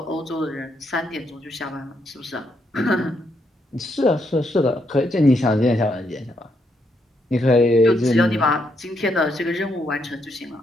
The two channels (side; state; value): both; normal; correlation 0.77